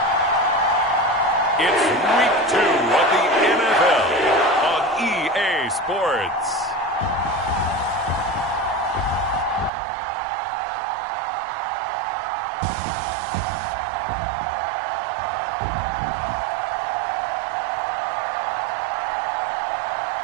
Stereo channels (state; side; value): drops out; left; at 9.7 s